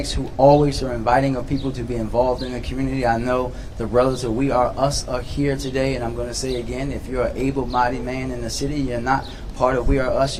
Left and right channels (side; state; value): both; identical; correlation 1.00